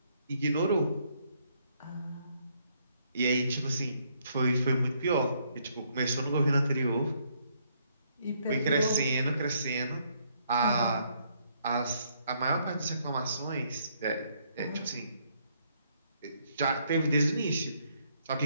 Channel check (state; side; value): inverted; both; correlation -0.70